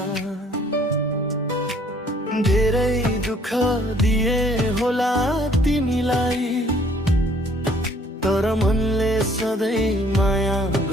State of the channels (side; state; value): both; normal; correlation 0.60